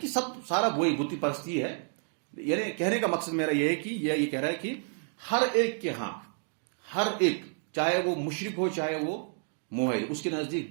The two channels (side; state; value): left; silent; 58 dB below the other